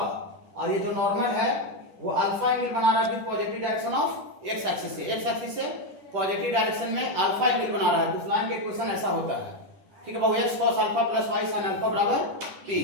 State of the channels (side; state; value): left; late; 10 ms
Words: और ये जो नॉर्मल है वो अल्फा एंगल बना रहा है with positive direction of x axis से पॉजिटिव डायरेक्शन में अल्फा एंगल बना रहा है। तो उस लाइन का इक्वेशन ऐसा होता है, ठीक है बाबू, x cos alpha plus y sin alpha बराबर p।